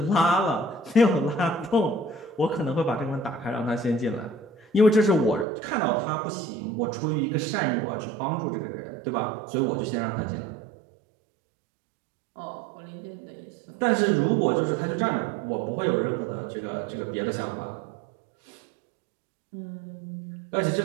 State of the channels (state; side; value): drops out; left; at 5.5 s